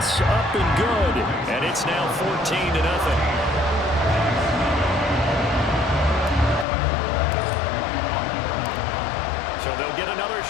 up and good. And it's now 14-0. So they'll get another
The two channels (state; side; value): drops out; right; at 6.7 s